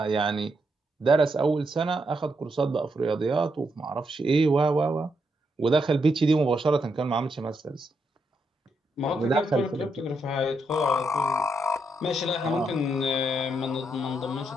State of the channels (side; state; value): both; normal; correlation 0.80